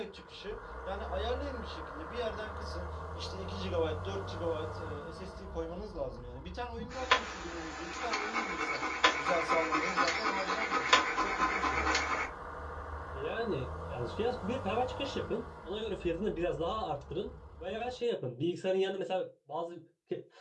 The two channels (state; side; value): identical; both; correlation 1.00